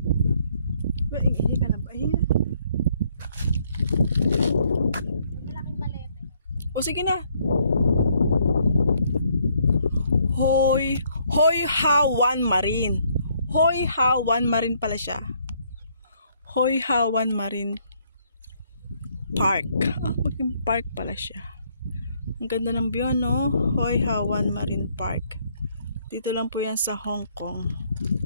Uy, hindi ka na ba? Ayun na. Malaking palete. O sige na. Hoi Ha Wan Marine. Hoi Ha Wan Marine pala siya. Hoi Ha Wan Marine Park. Maging park pala siya. Ang ganda ng view, no? Hoi Ha Wan Marine Park. Dito lang po yan sa Hong Kong.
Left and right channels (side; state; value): both; inverted; correlation -0.68